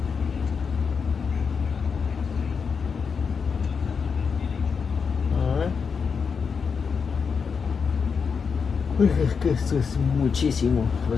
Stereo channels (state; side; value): quieter; right; 5.8 dB